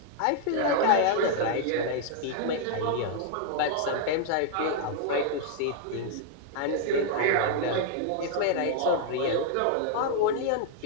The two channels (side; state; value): both; different; correlation -0.01